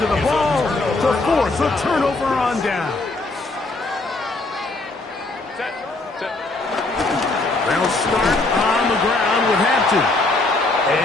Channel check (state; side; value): quieter; right; 3.2 dB